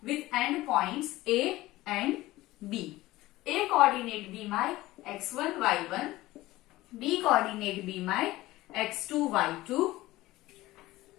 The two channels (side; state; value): right; quieter; 17.7 dB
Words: with endpoints A and B. A coordinate be my x1 y1, B coordinate be my x2 y2,